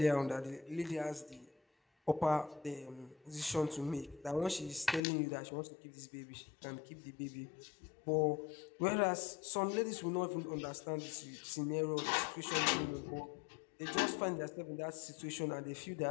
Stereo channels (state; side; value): drops out; right; at 5.0 s